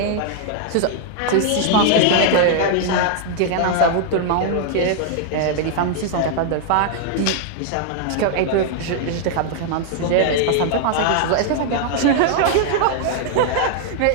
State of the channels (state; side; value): different; both; correlation 0.00